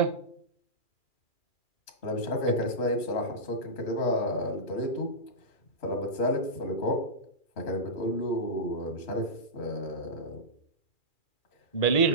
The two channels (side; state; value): right; late; 2.4 ms